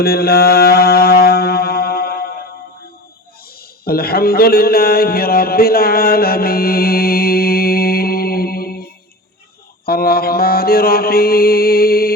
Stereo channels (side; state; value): both; normal; correlation 0.32